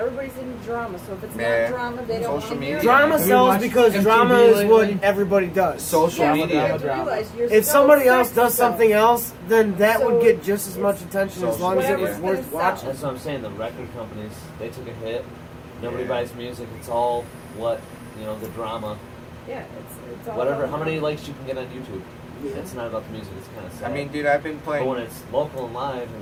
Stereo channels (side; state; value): both; identical; correlation 1.00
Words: in drama, so if it's Yeah. not drama, they don't Social want to hear media. it. Drama Have you sells watched because MTV drama is what lately? everybody does. Social Yeah, media. but you have to Drama. realize you're If so somebody else obsessed does with something else, then that So would get just as much attention as social long as it was media. worth watching. That's what I'm saying. The record companies, they took a hit. Nobody Yeah. buys music. It's all what the drama. Yeah, it's all Whatever. about How many drama. likes you can get on YouTube. Yeah. It's not about the music. It's kind of I sad. mean, dude, I've been but when playing. it's local and live,